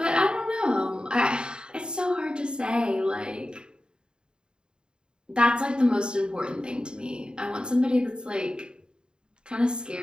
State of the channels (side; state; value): left; late; 0.049 ms